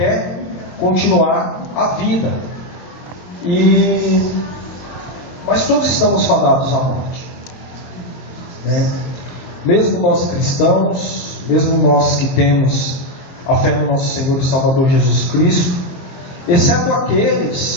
continuar a vida. Mas todos estamos fadados à morte, né? Mesmo nós cristãos, mesmo nós que temos a fé no nosso Senhor e Salvador Jesus Cristo, exceto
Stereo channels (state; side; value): late; right; 22 ms